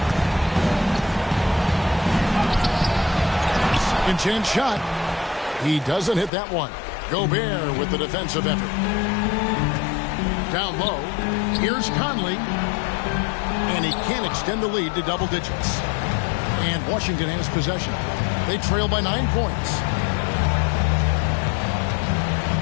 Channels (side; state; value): right; drops out; at 6.3 s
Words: Second chance shot. He doesn't hit that one. Gobert with the defensive effort. Down low. Here's Conley. And he can't extend the lead to double digits. And Washington has possession. They trail by 9 points.